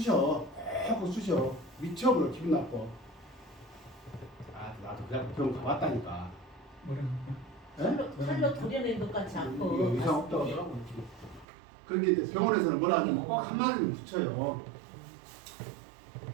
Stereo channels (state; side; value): drops out; left; at 11.5 s